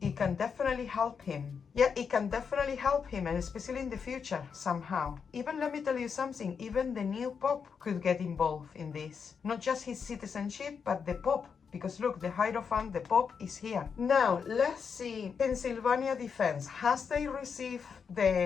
It can definitely help him. Yeah, it can definitely help him, and especially in the future, somehow. Even, let me tell you something, even the new Pope could get involved in this. Not just his citizenship, but the Pope. Because look, the Hierophant, the Pope is here. Now, let's see. Pennsylvania defense. Has they received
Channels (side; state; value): right; quieter; 6.2 dB